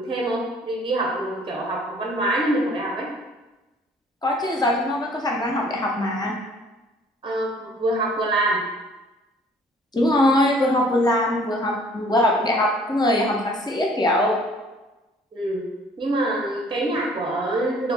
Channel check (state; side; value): normal; both; correlation 0.56